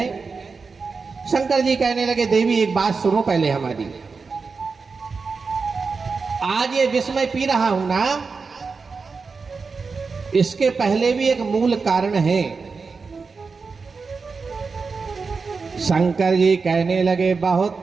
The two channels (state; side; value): quieter; left; 4.7 dB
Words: शंकर जी कहने लगे देवी एक बात सुनो पहले हमारी, आज ये विष मैं पी रहा हूं ना, इसके पहले भी एक मूल कारण है। शंकर जी कहने लगे बहुत